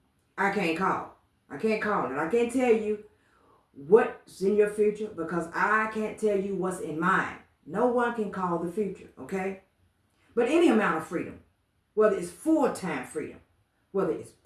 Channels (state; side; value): identical; both; correlation 1.00